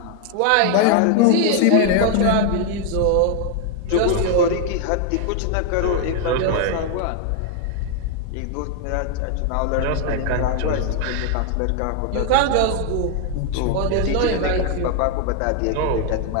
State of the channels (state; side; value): different; both; correlation 0.00